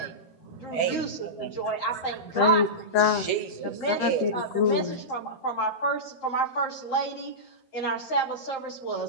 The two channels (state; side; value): late; right; 12 ms